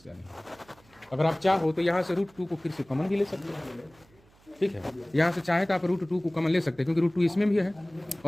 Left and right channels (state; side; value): noise; right; hum, 29 dB below the sound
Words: नहीं। अगर आप चाहो तो यहाँ से √2 को फिर से कॉमन भी ले सकते हो। ठीक है, यहाँ से चाहे तो आप √2 को कॉमन ले सकते हैं, क्योंकि √2 इसमें भी है